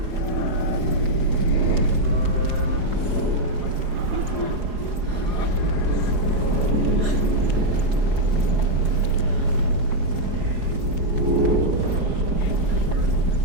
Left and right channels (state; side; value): late; left; 4.8 ms